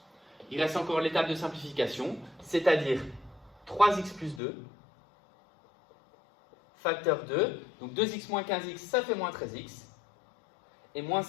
Il reste encore l'étape de simplification, c'est-à-dire 3x plus 2, facteur 2, donc 2x moins 15x, ça fait moins 13x, et moins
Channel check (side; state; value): right; drops out; at 4.4 s